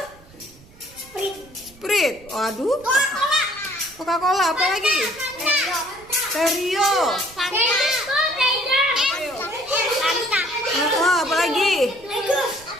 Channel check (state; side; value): noise; right; rumble, 24 dB below the sound